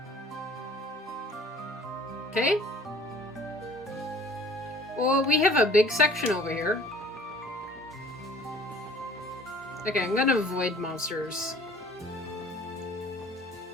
Okay. Well, we have a big section over here. Okay, I'm gonna avoid monsters.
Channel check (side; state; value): both; normal; correlation 0.50